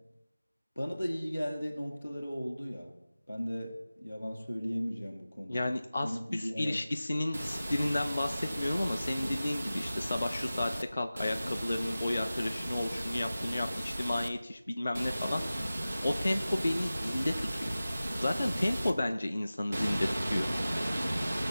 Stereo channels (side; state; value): both; inverted; correlation -0.96